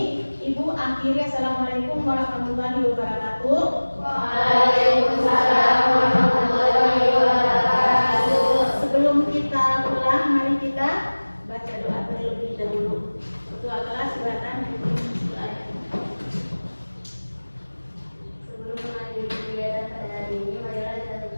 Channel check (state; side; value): inverted; both; correlation -1.00